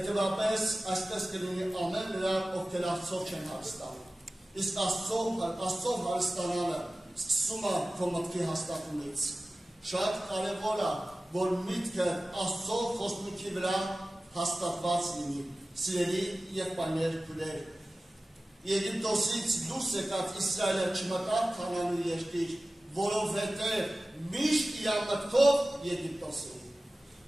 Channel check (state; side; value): normal; both; correlation 0.96